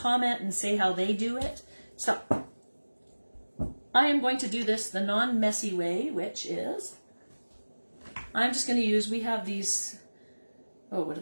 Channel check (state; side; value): inverted; both; correlation -1.00